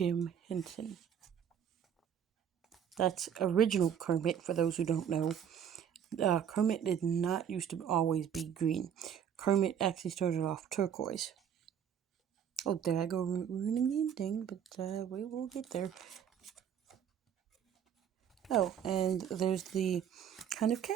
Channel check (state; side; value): quieter; left; 8.7 dB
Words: Henson. That's original Kermit, for those who don't know. Kermit did not used to always be green. Kermit actually started off turquoise. Oh, there I go ruining the ending, but we will get there. Oh, and there's the kind of